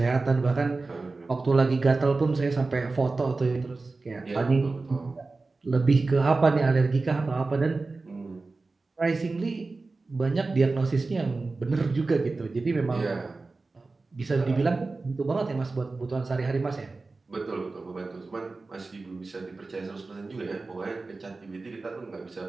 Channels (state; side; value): quieter; left; 3.7 dB